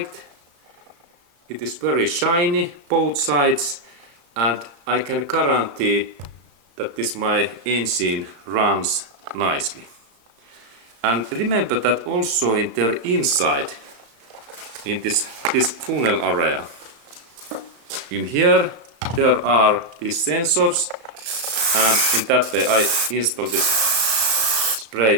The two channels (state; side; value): late; left; 35 ms